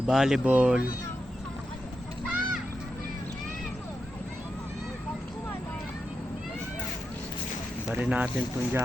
Bari natin tong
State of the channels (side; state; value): both; normal; correlation 0.88